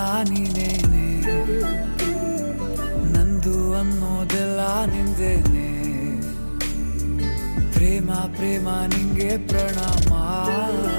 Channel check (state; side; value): inverted; both; correlation -1.00